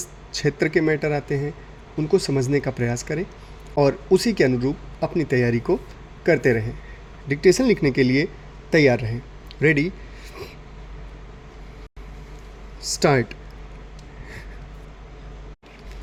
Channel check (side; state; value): both; identical; correlation 1.00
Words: क्षेत्र के मैटर आते हैं, उनको समझने का प्रयास करें और उसी के अनुरूप अपनी तैयारी को करते रहें। डिक्टेशन लिखने के लिए तैयार रहें। Ready, start.